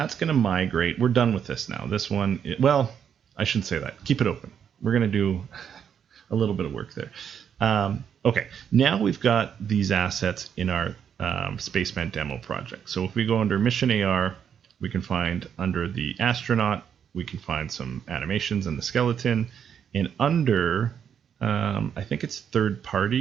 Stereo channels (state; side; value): quieter; left; 8.1 dB